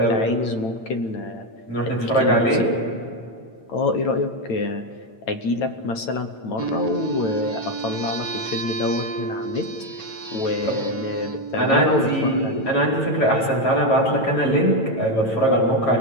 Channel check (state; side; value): late; right; 9.0 ms